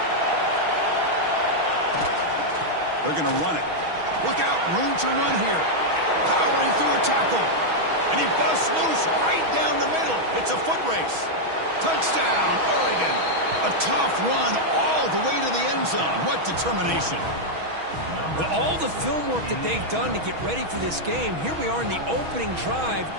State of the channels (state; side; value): late; left; 6.2 ms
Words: They're going to run it. Look out, room to run here. Powering through a tackle. And he busts loose right down the middle. It's a foot race. Touchdown, Oregon. A tough run all the way to the end zone. What determination. With all the film work that they've done to get ready for this game, here we are in the opening drive.